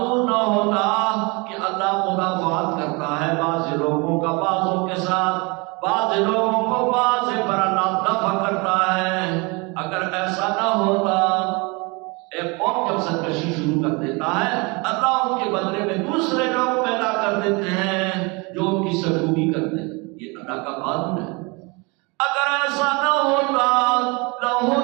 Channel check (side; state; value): left; quieter; 28.3 dB